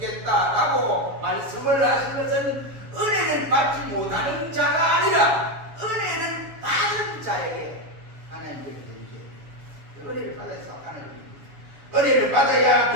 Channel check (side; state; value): left; late; 7.2 ms